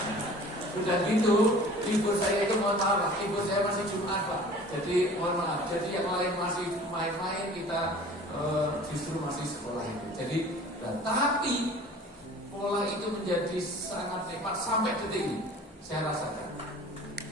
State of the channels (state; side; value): normal; both; correlation 0.45